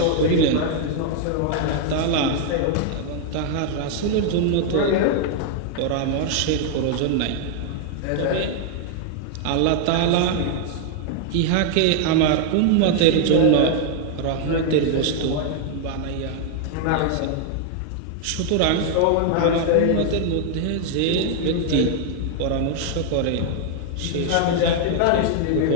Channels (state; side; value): different; both; correlation 0.00